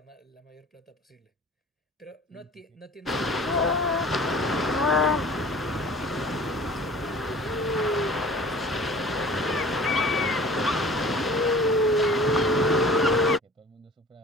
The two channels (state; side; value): normal; both; correlation 0.45